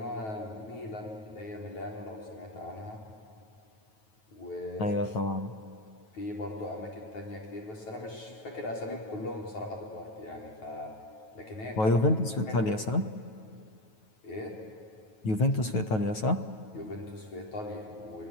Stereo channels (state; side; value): late; right; 9.3 ms